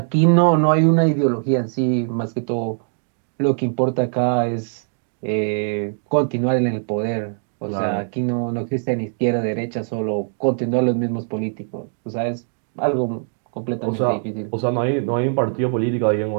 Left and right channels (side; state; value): left; silent; digital silence